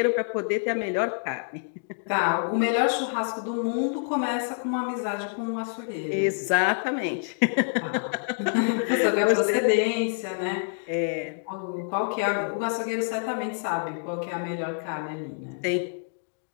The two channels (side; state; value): right; silent; digital silence